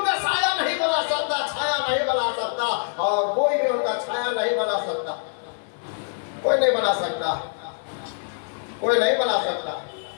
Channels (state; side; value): silent; right; digital silence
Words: साया नहीं बना सकता, छाया नहीं बना सकता, और कोई भी उनका छाया नहीं बना सकता। कोई नहीं बना सकता, कोई नहीं बना सकता।